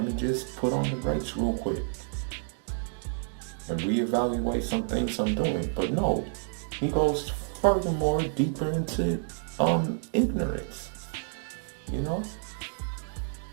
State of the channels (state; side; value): silent; left; digital silence